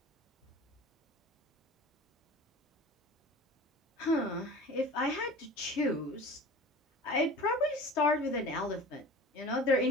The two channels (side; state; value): both; normal; correlation 0.39